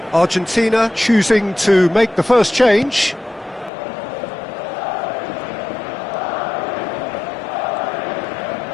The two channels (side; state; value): right; drops out; at 3.7 s